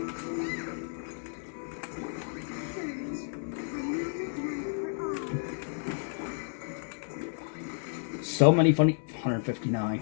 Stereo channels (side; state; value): right; silent; 57 dB below the other